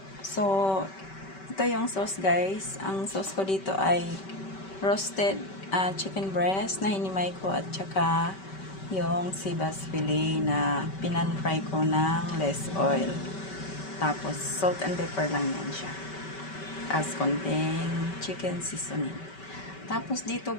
So, ito yung sauce guys. Ang sauce ko dito ay roasted chicken breast na hinimay ko at saka yung sibas fillet na pinan-fry ko ng less oil. Tapos, salt and pepper lang yan siya. As konting chicken seasoning. Tapos dito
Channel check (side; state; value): right; late; 5.2 ms